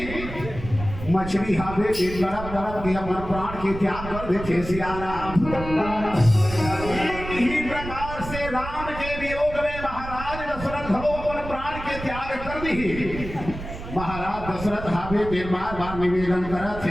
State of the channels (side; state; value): right; noise; rumble, 10 dB below the sound